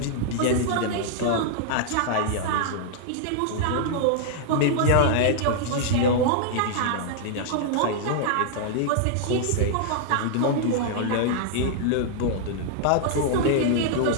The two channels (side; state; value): both; different; correlation -0.01